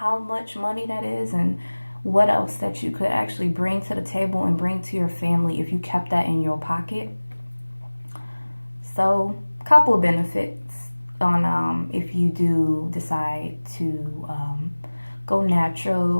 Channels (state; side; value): inverted; both; correlation -1.00